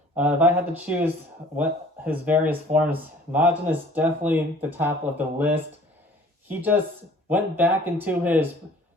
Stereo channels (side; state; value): both; normal; correlation 0.51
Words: If I had to choose what his various forms, Majin is definitely the top of the list. He just went back into his